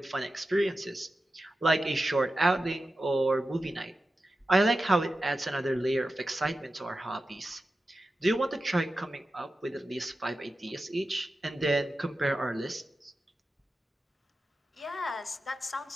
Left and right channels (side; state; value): both; normal; correlation 0.92